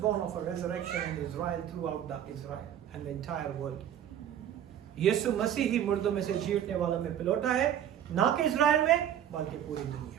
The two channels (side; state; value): left; quieter; 10.2 dB